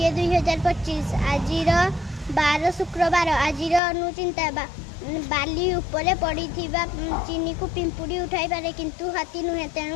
आजिर 12 शुक्रवार आजिर अनुचिंता बाली उपरे पड़िथिबा चीनी को पिंपुड़ी उठाई पारे किंतु हाथी नुहे तेणु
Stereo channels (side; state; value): right; drops out; at 3.8 s